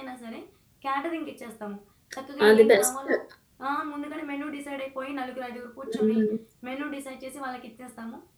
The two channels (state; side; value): identical; both; correlation 1.00